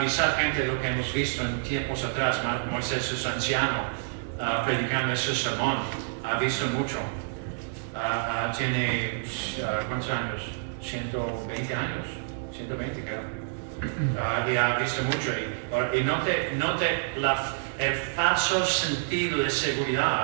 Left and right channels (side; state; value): left; silent; digital silence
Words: gente de lo que hemos visto en tiempos atrás. Moisés es anciano, predicando ese sermón, ha visto mucho. Tiene, ¿cuántos años? 120 años, 120 creo. Y ha visto mucho. Y note el falso sentido de